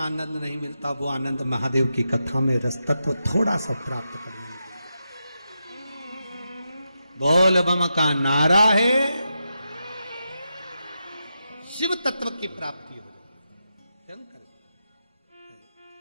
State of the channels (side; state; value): both; inverted; correlation -0.87